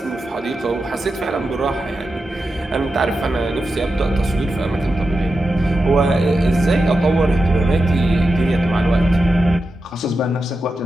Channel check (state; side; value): normal; both; correlation 0.90